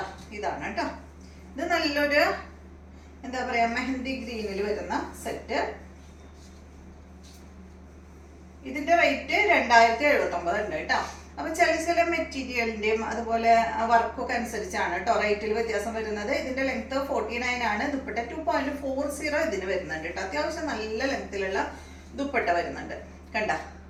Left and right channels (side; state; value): both; identical; correlation 1.00